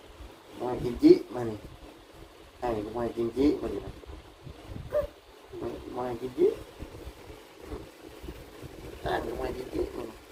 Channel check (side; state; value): both; identical; correlation 1.00